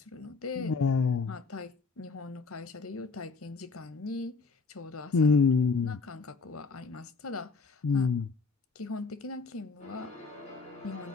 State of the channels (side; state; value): right; quieter; 4.5 dB